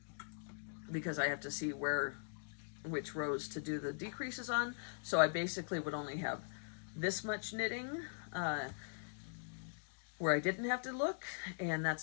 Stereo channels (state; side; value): silent; right; digital silence